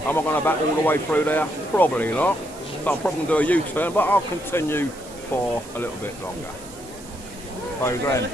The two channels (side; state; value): right; noise; hiss, 19 dB below the sound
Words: I going to back all the way through there? Probably not. So I'm probably going to do a U-turn, but I'll continue for a little bit longer. So then,